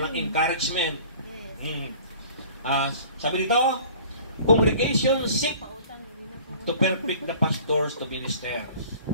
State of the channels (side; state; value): both; inverted; correlation -0.48